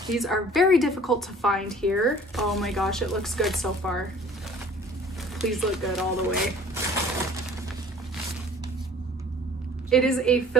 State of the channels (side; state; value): both; normal; correlation 0.50